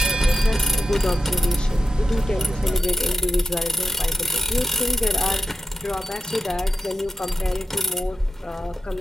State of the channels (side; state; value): both; normal; correlation 0.90